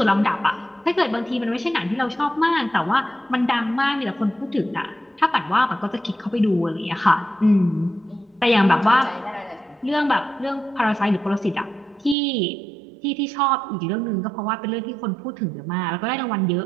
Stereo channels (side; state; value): left; drops out; at 12.2 s